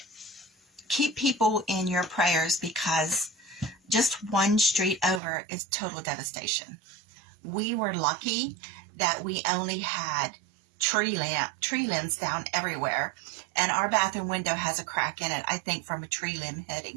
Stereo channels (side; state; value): left; drops out; at 5.2 s